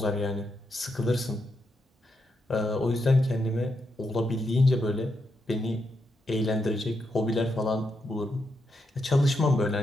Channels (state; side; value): normal; both; correlation 0.82